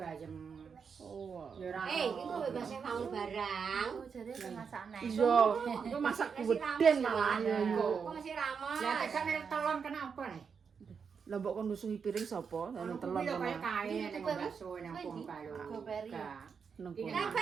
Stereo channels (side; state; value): left; quieter; 6.1 dB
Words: Oh. Ya ora. Iku bebas bangun barang. Oh jare pemasakne. Iya, itu masak geden malah ya iku. Kok masih ramas. Ya tekan telon kenapa nih? Lah mbok kon nusuhi piring sapa? Anu telon Kuwi lho kaya kono. kae ning bakso nang Bongkalo. Goperi. Nang kono.